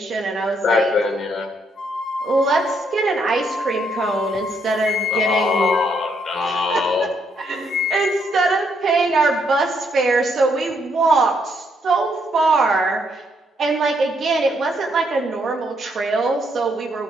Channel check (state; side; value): normal; both; correlation 0.74